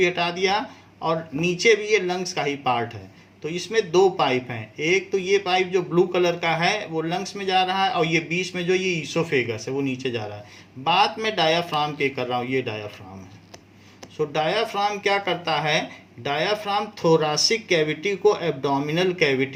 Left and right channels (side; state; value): both; identical; correlation 1.00